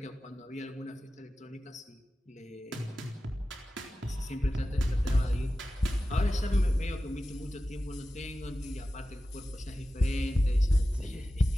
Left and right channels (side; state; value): both; normal; correlation 0.95